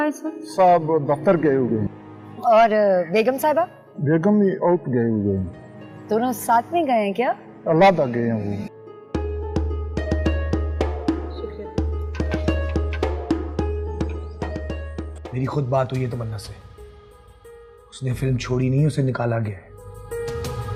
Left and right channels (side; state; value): both; identical; correlation 1.00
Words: है इस वक्त? साहब दफ्तर गए हुए हैं। और बेगम साहिबा? बेगम भी आउट गए हुए हैं। दोनों साथ में गए हैं क्या? अल्लाह गए हैं वो। मेरी खुद बात हुई है तमन्ना से। उसने फिल्म छोड़ी नहीं, उसे निकाला गया है।